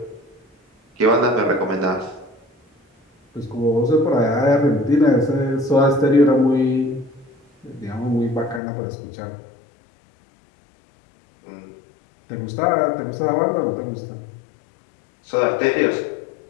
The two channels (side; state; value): right; drops out; at 8.6 s